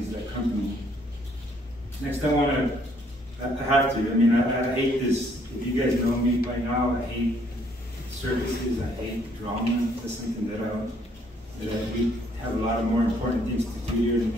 that company. Next, I have to, I mean, I hate this. If you guys know me by now, I hate circuses, I hate drama. That's something that we have a lot of more important things to do here in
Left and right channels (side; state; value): both; normal; correlation 0.66